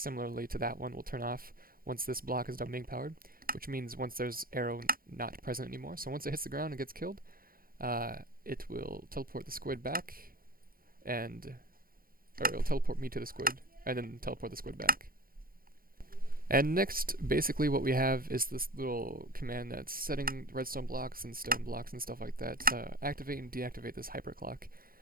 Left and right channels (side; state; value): left; late; 0.42 ms